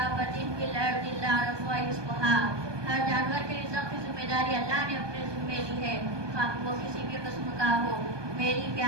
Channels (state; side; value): late; left; 1.2 ms